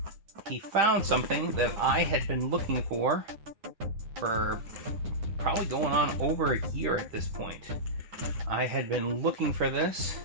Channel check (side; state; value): left; late; 10 ms